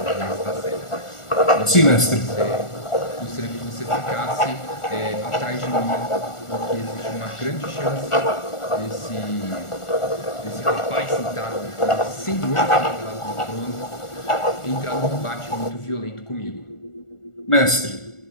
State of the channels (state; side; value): late; right; 1.4 ms